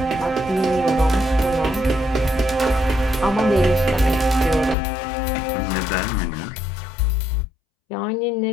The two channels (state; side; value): drops out; right; at 4.8 s